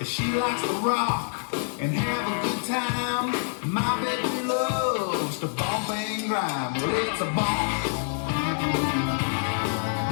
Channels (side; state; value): right; silent; 58 dB below the other